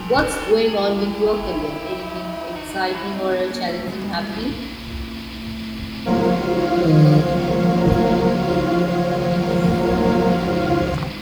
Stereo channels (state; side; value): identical; both; correlation 1.00